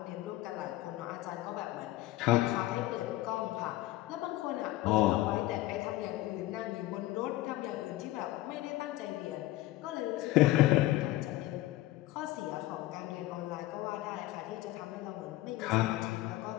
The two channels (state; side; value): quieter; right; 16.5 dB